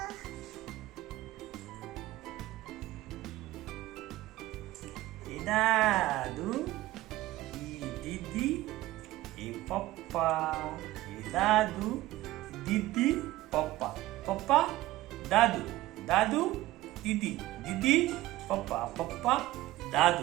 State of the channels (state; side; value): quieter; left; 16.8 dB